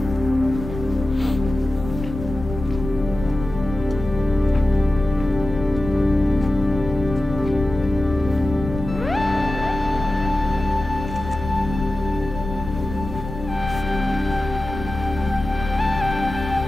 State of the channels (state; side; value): noise; left; rumble, 9 dB below the sound